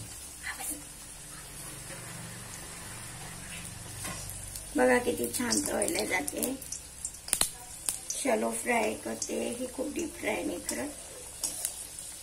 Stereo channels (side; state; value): both; identical; correlation 1.00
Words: बघा किती छान तळल्या जाते. शॅलो फ्राय करते ही, खूप डीप फ्राय नाही करत.